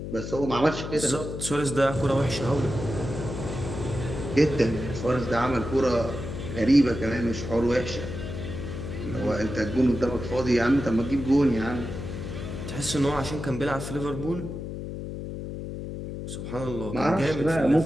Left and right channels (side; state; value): left; noise; hum, 7 dB below the sound